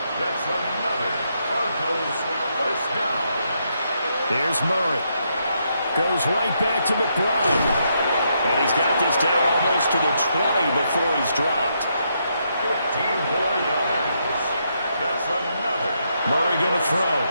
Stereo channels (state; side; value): inverted; both; correlation -0.78